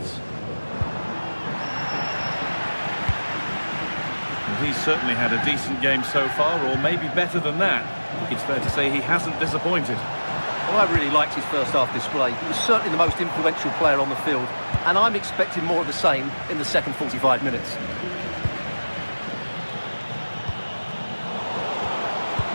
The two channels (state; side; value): inverted; both; correlation -1.00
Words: Well, he's certainly had a decent game so far, or maybe better than that. I think it's fair to say he hasn't disappointed. Well, I really liked his first half display. He was certainly the most influential player on the field, and I'm expecting more of the same in the second 45 minutes.